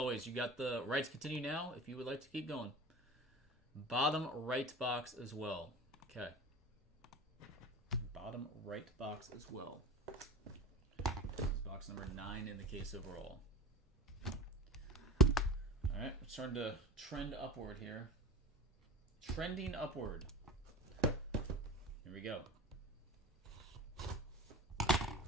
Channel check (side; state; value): both; normal; correlation 0.32